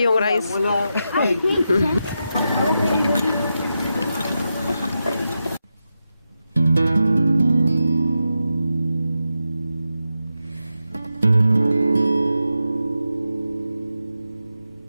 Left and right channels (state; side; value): inverted; both; correlation -0.88